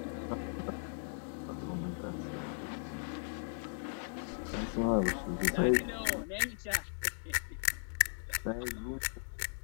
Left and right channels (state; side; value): silent; right; digital silence